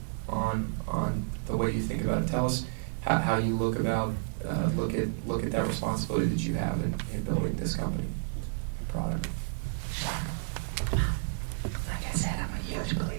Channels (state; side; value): silent; left; digital silence